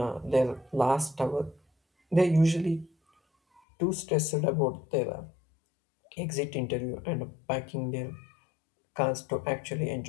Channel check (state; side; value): drops out; right; at 3.6 s